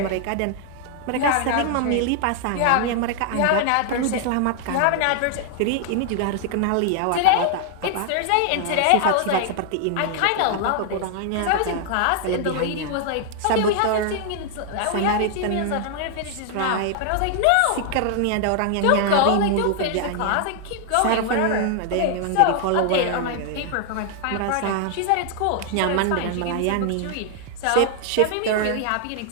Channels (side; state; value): both; different; correlation 0.00